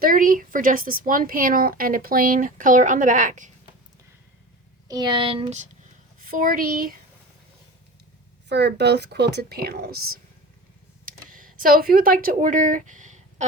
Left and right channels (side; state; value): both; normal; correlation 0.34